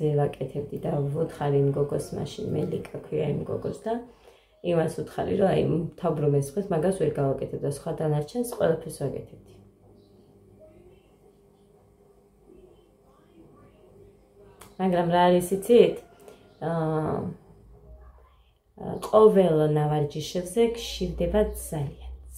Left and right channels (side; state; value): both; identical; correlation 1.00